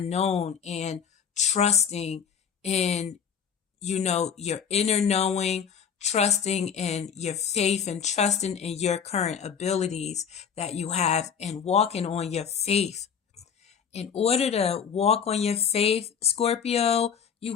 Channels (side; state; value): right; quieter; 7.3 dB